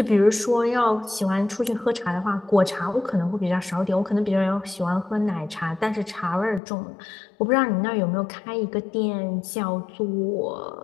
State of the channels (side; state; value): right; drops out; at 6.6 s